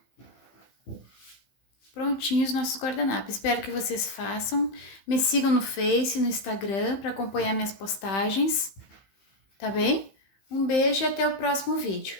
Prontinhos nossos guardanapos. Espero que vocês façam. Me sigam no Face, no Instagram, para acompanhar minhas postagens. Tá bem? Um beijo e até o próximo vídeo.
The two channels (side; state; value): right; late; 15 ms